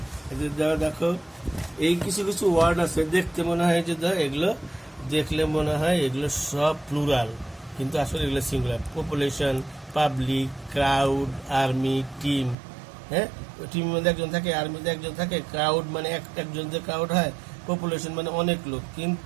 দেখো এই কিছু কিছু ওয়ার্ড আছে দেখতে মনে হয় যে এগুলো দেখলে মনে হয় এগুলো সব প্লুরাল, কিন্তু আসলে এগুলো singular. Population, public, crowd, army, team, হ্যাঁ, টিমের মধ্যে একজন থাকে, আর্মিতে একজন থাকে, ক্রাউড মানে একজন যে ক্রাউড হয়, পপুলেশন মানে অনেক লোক,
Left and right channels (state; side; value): drops out; left; at 12.6 s